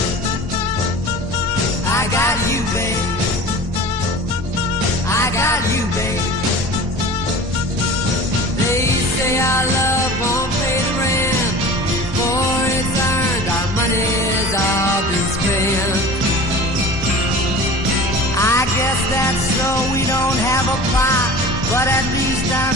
I got you, babe. I got you, babe. They say our love won't pay the rent before it's earned. Our money's all been spent. I guess that's so we don't have a plot, but at least I'm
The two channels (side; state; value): both; normal; correlation 0.39